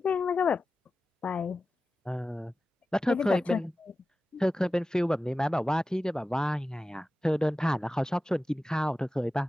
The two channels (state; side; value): normal; both; correlation 0.94